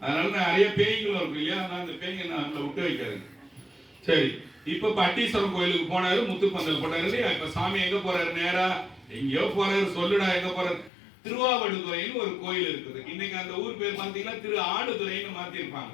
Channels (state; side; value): drops out; right; at 10.9 s